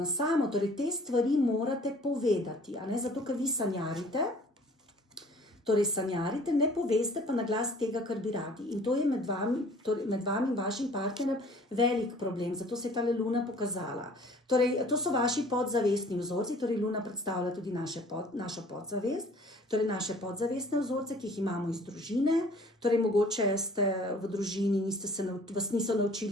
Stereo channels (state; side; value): normal; both; correlation 0.52